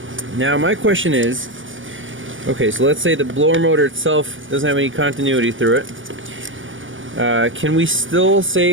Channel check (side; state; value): left; late; 0.57 ms